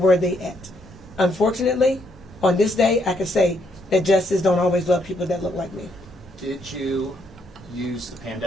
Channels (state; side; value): normal; both; correlation 0.73